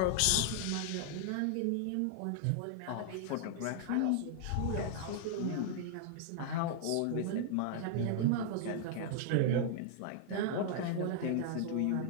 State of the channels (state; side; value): different; both; correlation -0.01